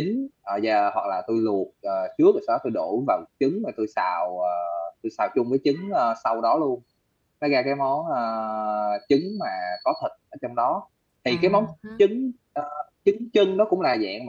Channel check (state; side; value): identical; both; correlation 1.00